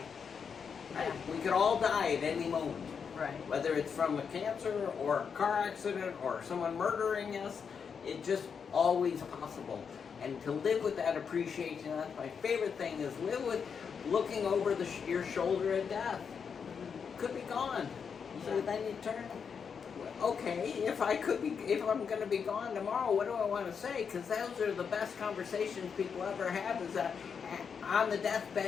Yeah. We could all die at any moment. Right. Whether it's from a cancer or a car accident or someone murdering us, it's just always possible. And to live with that appreciation, that's my favorite thing, is live with looking over your shoulder at death. Could be gone. Yeah. So then you turn, okay, if I'm going to be gone tomorrow, what do I want to say? Because those are the best conversations people ever have, is that on the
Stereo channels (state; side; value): quieter; right; 6.4 dB